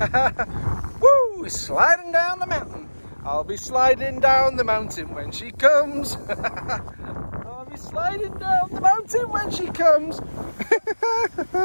Woo! Sliding down the mountain. I'll be sliding down the mountain when she comes. I'll be sliding down the mountain when she comes.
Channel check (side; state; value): both; inverted; correlation -1.00